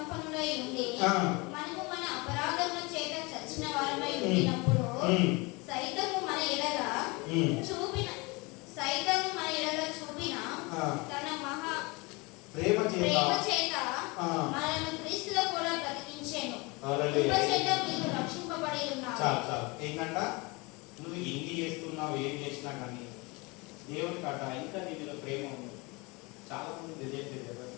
ఉండి మనము మన అపరాధముల చేత చచ్చిన వారమై ఉండినప్పుడు సైతము మన ఎడల చూపిన తన మహా ప్రేమ చేత మనల్ని క్రీస్తులో కూడా బ్రతికించెను. కృప చేత మీరు రక్షింపబడి ఉన్నారు. చాలు ఏంటంట, నువ్వు ఎన్ని చేస్తున్నావు ఏం చేసినా కానీ దేవుని కట్ట ఇంకా నీలో ప్రేమ ఉంది. చాలా మంది తెలియట్లేదు.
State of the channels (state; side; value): quieter; right; 26.4 dB